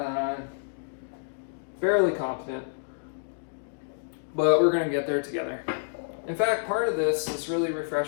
fairly confident, but we're going to get there together. In fact, part of this is really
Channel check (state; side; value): silent; right; digital silence